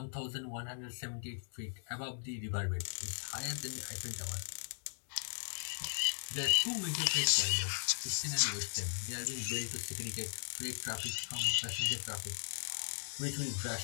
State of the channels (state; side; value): silent; right; digital silence